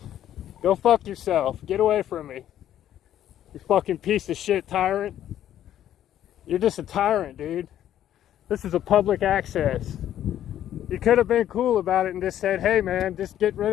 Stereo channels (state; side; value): quieter; right; 11.4 dB